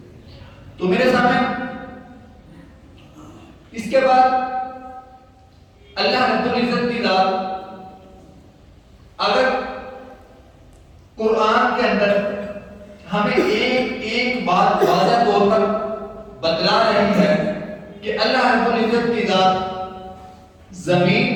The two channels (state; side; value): identical; both; correlation 1.00